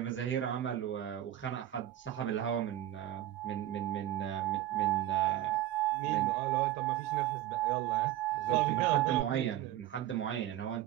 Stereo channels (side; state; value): left; quieter; 13.1 dB